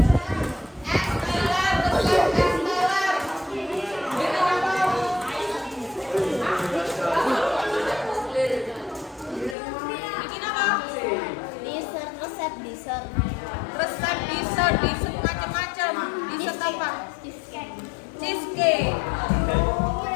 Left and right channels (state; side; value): drops out; right; at 9.6 s